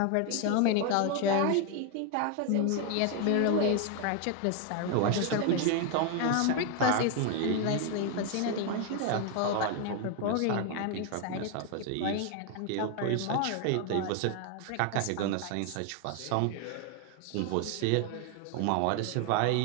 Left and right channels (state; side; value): different; both; correlation 0.01